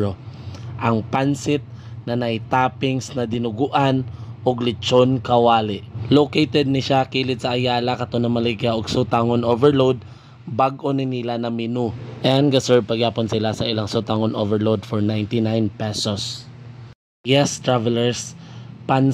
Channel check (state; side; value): identical; both; correlation 1.00